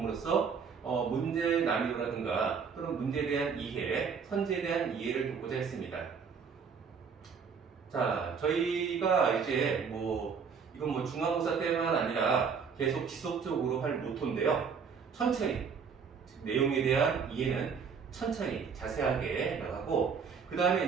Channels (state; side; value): quieter; left; 6.1 dB